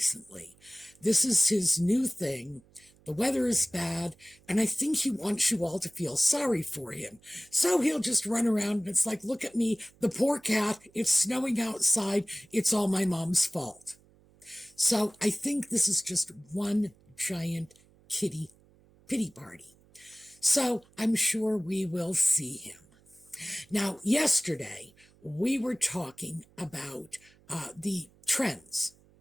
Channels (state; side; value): noise; right; hum, 29 dB below the sound